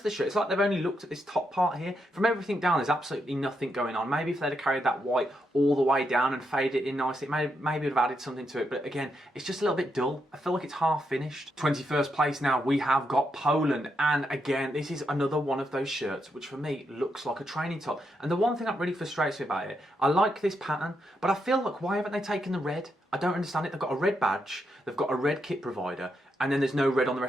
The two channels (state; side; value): normal; both; correlation 0.81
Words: the shirt. It's like they've only looked at this top part here. From everything down, there's absolutely nothing going on. Maybe if they'd have carried that white all the way down and faded it in nicely, maybe would have added something to it. But again, it's just a little bit dull. I feel like it's half finished. 21st place now, we have got Poland, and again, this is another one of those shirts which for me looks like a training top. And the one thing that really frustrates me about it, I like this pattern, but I feel like, why haven't they taken the red? I don't understand it. They've got a red badge, they've got a red kit provider, and then there's no red on the